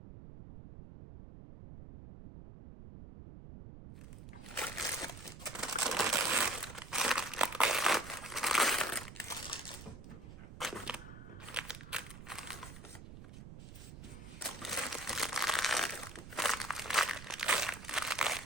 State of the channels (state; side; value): noise; right; rumble, 13 dB below the sound